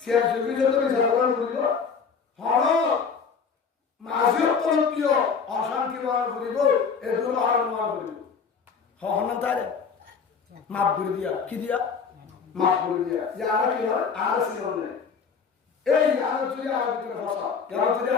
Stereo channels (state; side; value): quieter; right; 5.9 dB